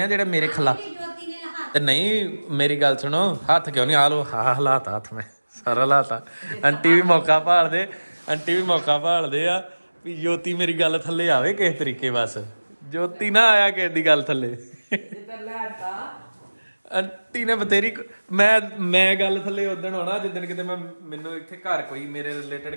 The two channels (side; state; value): both; inverted; correlation -1.00